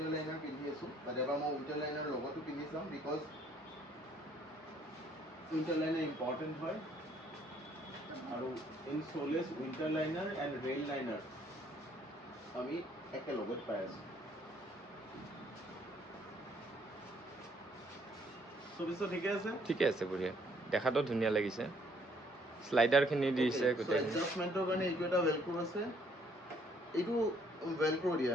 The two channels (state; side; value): normal; both; correlation 0.65